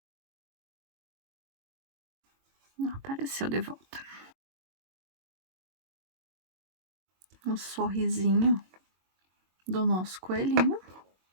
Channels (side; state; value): left; late; 22 ms